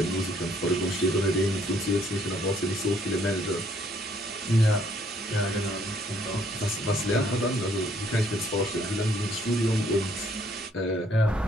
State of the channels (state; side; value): normal; both; correlation 0.66